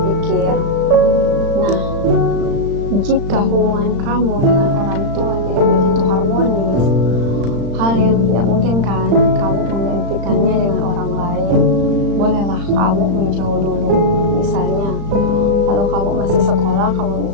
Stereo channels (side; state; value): left; late; 35 ms